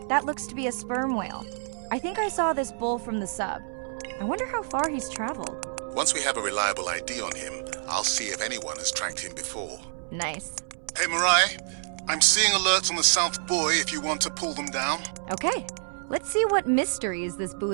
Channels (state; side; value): silent; left; 60 dB below the other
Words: That looks to be a sperm whale. I think I saw this bull from the sub. I wonder how far he's traveled. Once we have a reliable ID on him, I'll see if anyone has tracked him before. Nice. Hey, Mirai, I'm seeing alerts on the South Buoy if you want to pull them down. Okay, let's see what mysteries this